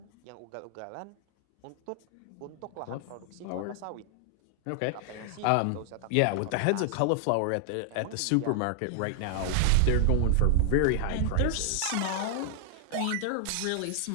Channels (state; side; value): different; both; correlation 0.00